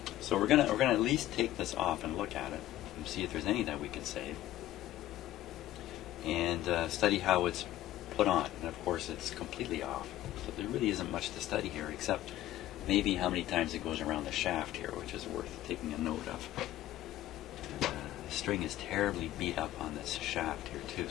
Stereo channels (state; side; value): quieter; right; 14.3 dB